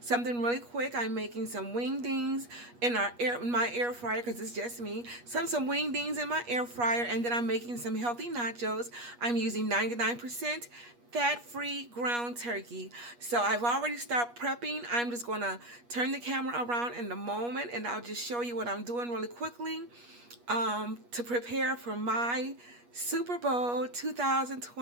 Something really quick. I'm making some wingdings in my air fryer because it's just me. Some wingdings in my air fryer, and then I'm making some healthy nachos. I'm using 99% fat-free ground turkey. So I've already started prepping. I'm just going to turn the camera around in a moment, and I'll just show you what I'm doing really quickly to prepare for my Super Bowl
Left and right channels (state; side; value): late; left; 8.3 ms